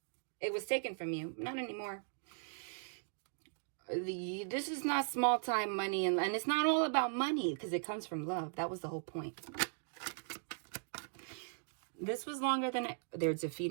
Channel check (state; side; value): silent; left; digital silence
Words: It was taken from you. Not anymore. This is not small time money. And it's not all about money because it comes from love. That was the whole point. This was longer than they're